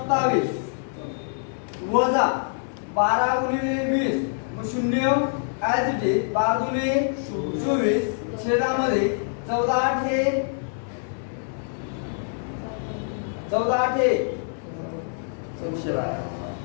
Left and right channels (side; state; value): right; silent; digital silence